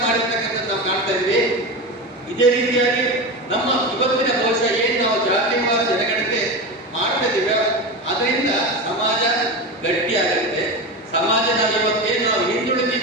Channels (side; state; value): both; normal; correlation 0.22